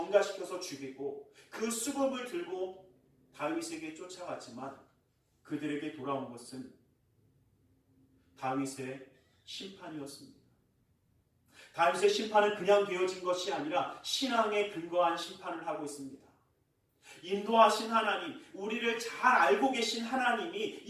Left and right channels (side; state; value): both; identical; correlation 1.00